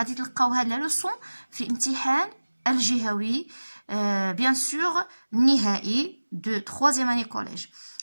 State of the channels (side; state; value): both; inverted; correlation -1.00